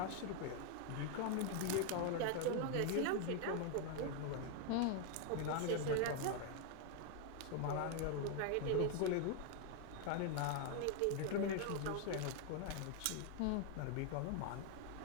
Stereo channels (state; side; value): different; both; correlation 0.00